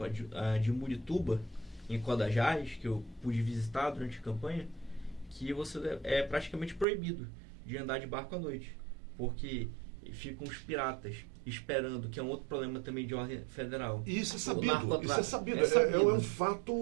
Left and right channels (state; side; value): drops out; left; at 6.9 s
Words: a de Murituba, em Codajás, que eu pude visitar durante a campanha, que você é praticamente proibido de andar de barco à noite, porque ficam os piratas esperando, que é um outro problema também de ordem federal. E isso é sabido. É um